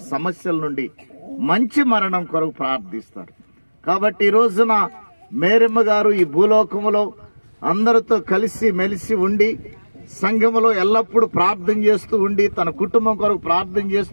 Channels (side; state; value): both; inverted; correlation -1.00